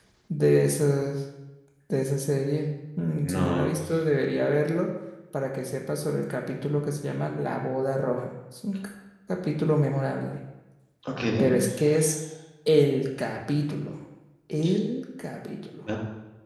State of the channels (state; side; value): identical; both; correlation 1.00